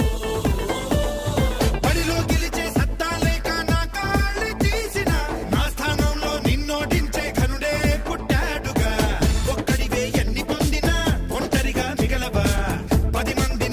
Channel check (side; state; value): both; identical; correlation 1.00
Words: బడిలో గెలిచే సత్తా లేక నా కాళ్ళు తీసిన నా స్థానంలో నిన్నోడించే ఘనుడే పుట్టాడుగా ఒక్కడివే ఎన్ని పొందినా ఒంటరిగా మిగలవా 10